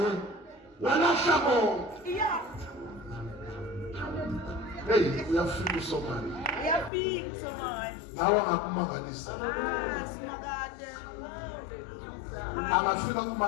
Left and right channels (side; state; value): right; drops out; at 6.9 s